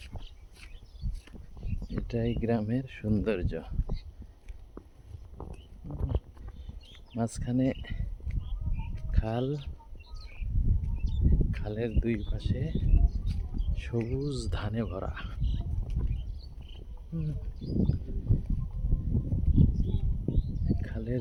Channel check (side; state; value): both; identical; correlation 1.00